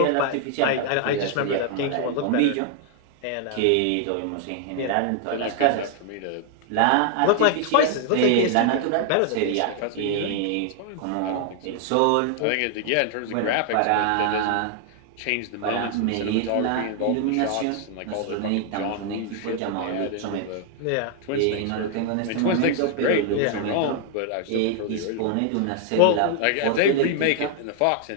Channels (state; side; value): different; both; correlation 0.00